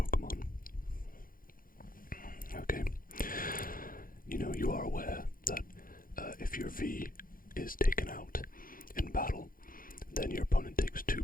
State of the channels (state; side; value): late; right; 0.41 ms